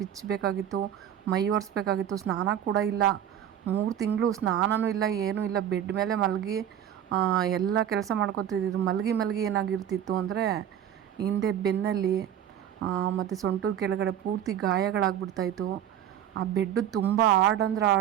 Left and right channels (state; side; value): quieter; left; 10.1 dB